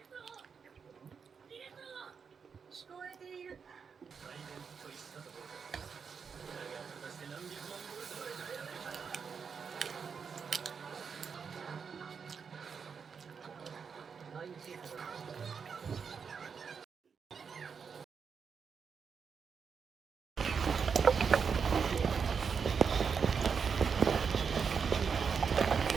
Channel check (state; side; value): quieter; left; 6.1 dB